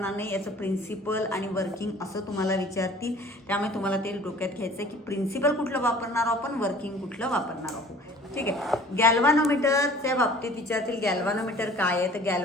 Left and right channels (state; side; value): normal; both; correlation 0.49